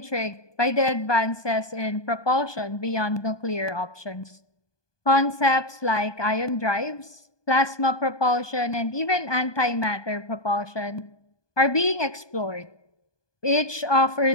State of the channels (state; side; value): late; right; 1.2 ms